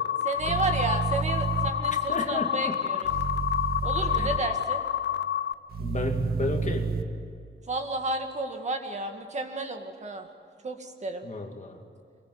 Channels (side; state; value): both; normal; correlation 0.11